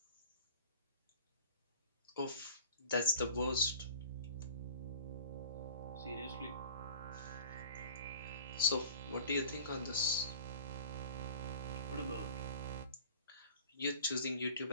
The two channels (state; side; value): inverted; both; correlation -0.45